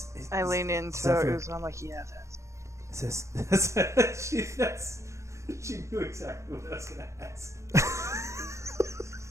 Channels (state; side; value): late; left; 0.14 ms